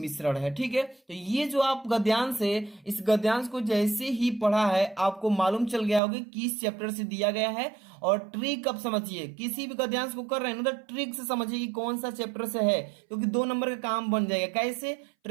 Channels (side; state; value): left; drops out; at 6.0 s